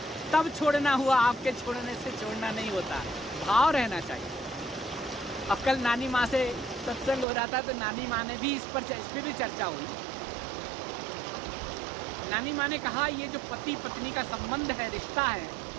तब छोड़ना हुआ, आपके छोड़ने से छोड़ना नहीं होता। भाव रहना चाहिए। अब कल नानी माँ से सत्संग हो रहा था तो नानी माँ ने भी इस पर भी चर्चा हुई। नानी माँ ने कहा ये जो पति पत्नी का संबंध है, रिश्ता है,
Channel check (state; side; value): drops out; left; at 7.2 s